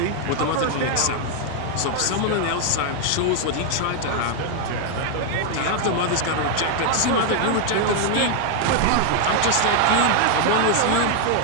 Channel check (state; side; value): different; both; correlation 0.00